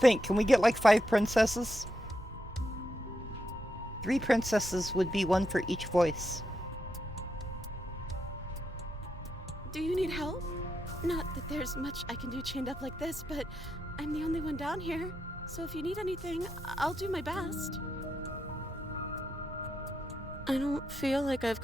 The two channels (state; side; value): normal; both; correlation 0.84